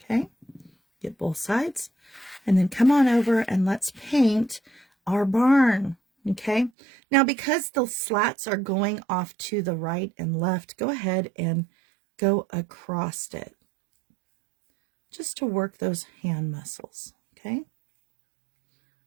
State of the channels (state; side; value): drops out; left; at 6.7 s